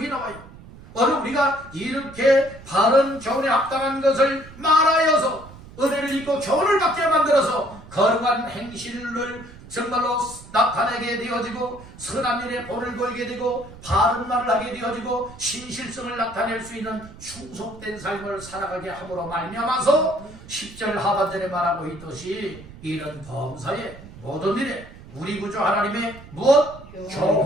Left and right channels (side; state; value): right; noise; rumble, 18 dB below the sound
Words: 나와요. 오늘 우리가 이렇게 바른 교훈에 합당한 것을 말하여서 은혜를 입고 교훈을 받게 만들어서 거룩한 행실을 정말로 나타내게 되어지고 선한 일에 본을 보이게 되고 바른 말을 하게 되어지고 신실성을 나타낼 수 있는 충속된 삶을 살아가게 함으로 말미암아서 10절 하반절에 말하고 있듯이 이런 범사의 모든 일에 우리 구주 하나님의 무엇?